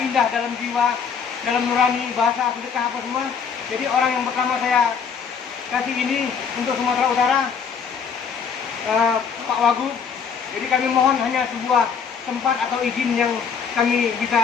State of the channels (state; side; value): quieter; right; 6.6 dB